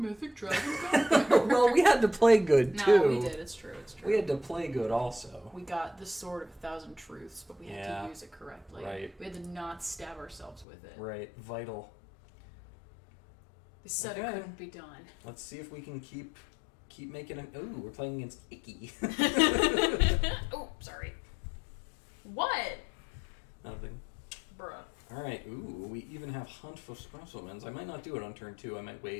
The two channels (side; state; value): right; drops out; at 10.7 s